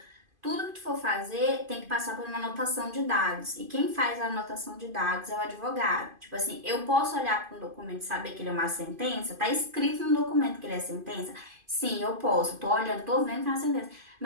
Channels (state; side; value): late; left; 2.5 ms